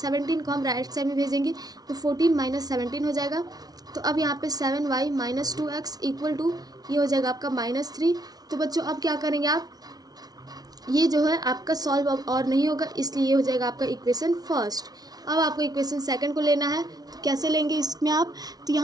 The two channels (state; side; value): late; left; 0.19 ms